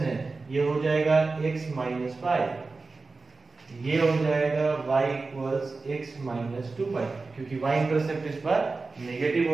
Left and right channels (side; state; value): left; quieter; 3.8 dB